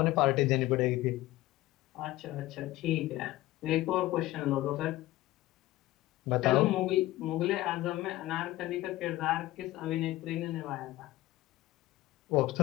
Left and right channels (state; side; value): quieter; right; 16.8 dB